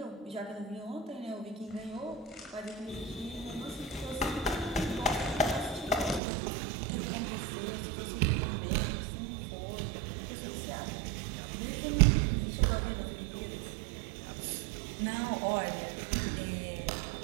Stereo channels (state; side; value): drops out; left; at 6.2 s